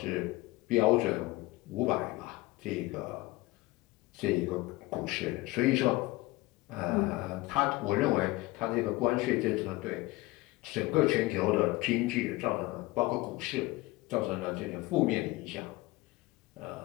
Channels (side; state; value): right; quieter; 20.7 dB